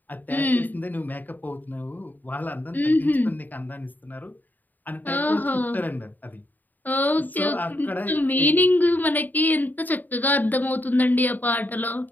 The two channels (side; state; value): right; late; 0.086 ms